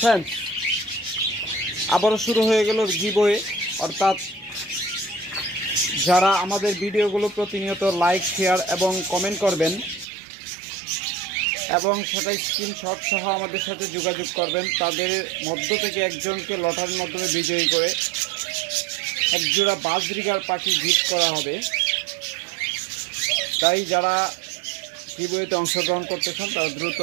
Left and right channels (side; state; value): left; drops out; at 10.1 s